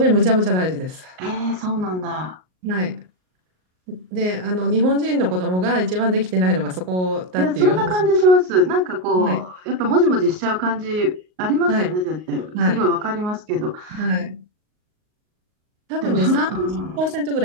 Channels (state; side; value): late; left; 38 ms